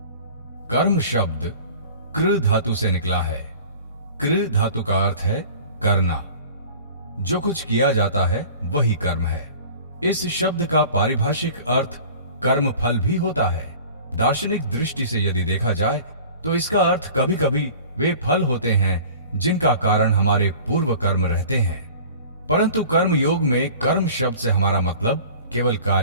कर्म शब्द कृ धातु से निकला है। कृ धातु का अर्थ है करना। जो कुछ किया जाता है वही कर्म है। इस शब्द का पारिभाषिक अर्थ कर्म फल भी होता है। दार्शनिक दृष्टि से यदि देखा जाए तो इसका अर्थ कभी कभी वे फल होते हैं जिनका कारण हमारे पूर्व कर्म रहते हैं, परंतु कर्म योग में कर्म शब्द से हमारा मतलब केवल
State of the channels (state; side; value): inverted; both; correlation -0.44